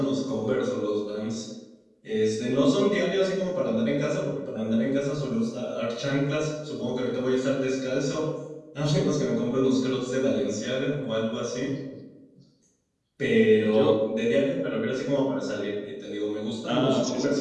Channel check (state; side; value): identical; both; correlation 1.00